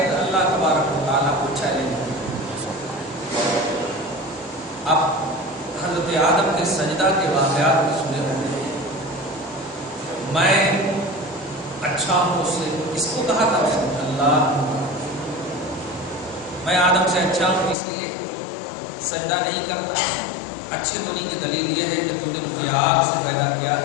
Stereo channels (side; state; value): right; drops out; at 17.8 s